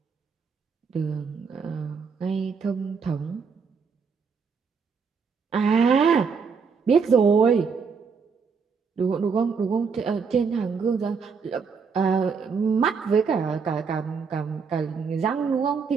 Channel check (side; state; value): left; quieter; 5.6 dB